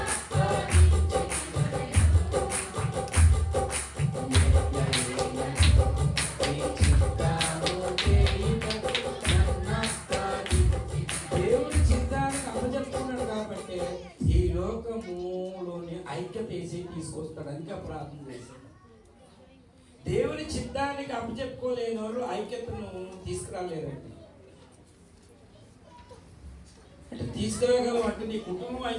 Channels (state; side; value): identical; both; correlation 1.00